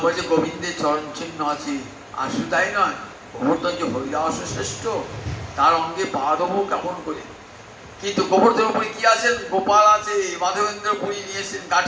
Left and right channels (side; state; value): both; identical; correlation 1.00